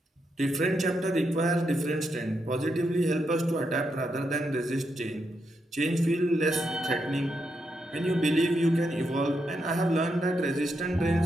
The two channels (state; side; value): normal; both; correlation 0.82